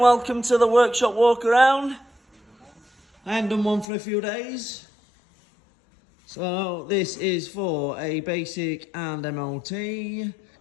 welcome to the workshop walk around. I haven't done one for a few days. So this is for a basic and MOT.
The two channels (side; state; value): right; drops out; at 3.9 s